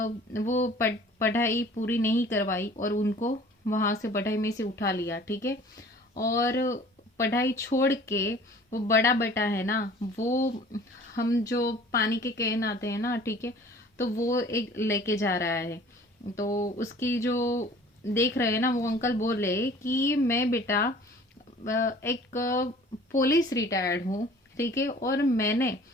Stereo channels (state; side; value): normal; both; correlation 0.49